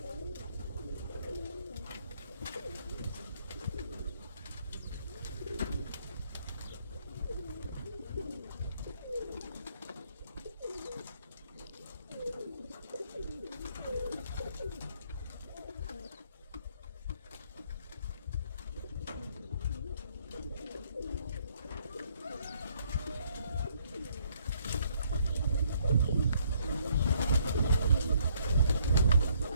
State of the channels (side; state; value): both; inverted; correlation -0.68